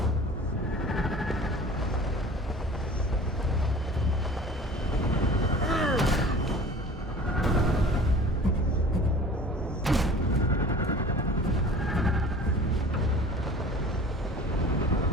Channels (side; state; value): both; normal; correlation 0.43